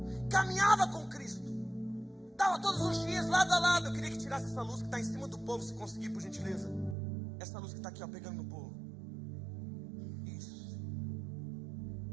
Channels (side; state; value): left; drops out; at 7.0 s